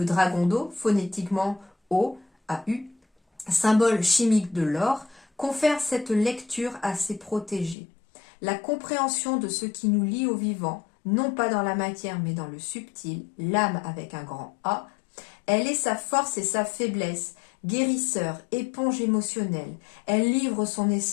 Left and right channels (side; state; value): right; drops out; at 7.8 s